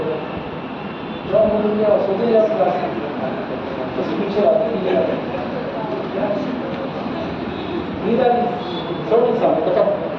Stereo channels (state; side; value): identical; both; correlation 1.00